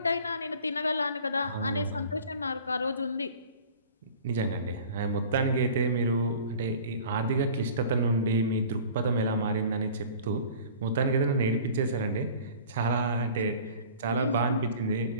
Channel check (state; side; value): inverted; both; correlation -0.45